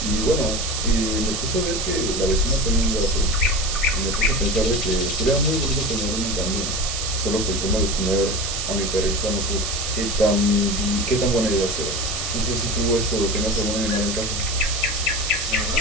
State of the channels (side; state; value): right; noise; hiss, 3 dB below the sound